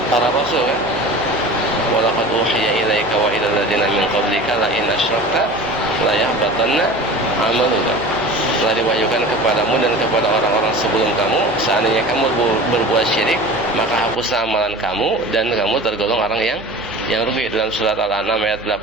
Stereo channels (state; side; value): noise; right; hum, 21 dB below the sound